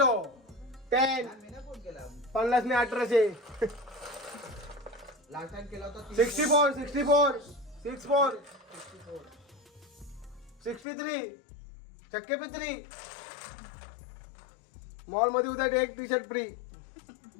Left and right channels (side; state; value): right; drops out; at 10.9 s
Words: 10 10 50 ने 1800 लास्ट टाइम केला होता 64 64 63 चक्के पे 3 मॉल मध्ये उद्या एक टी शर्ट फ्री.